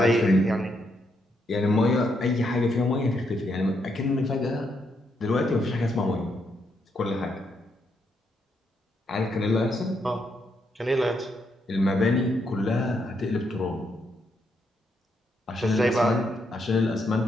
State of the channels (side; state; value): both; normal; correlation 0.78